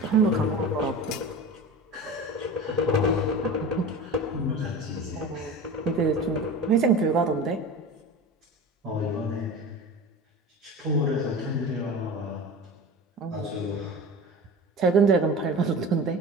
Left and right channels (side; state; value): both; normal; correlation 0.32